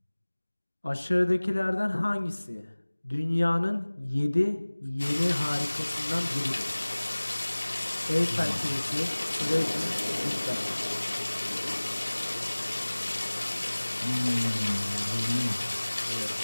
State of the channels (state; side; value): inverted; both; correlation -1.00